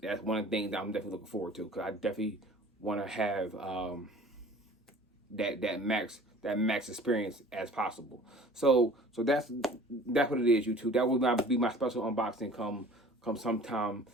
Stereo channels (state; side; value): normal; both; correlation 0.47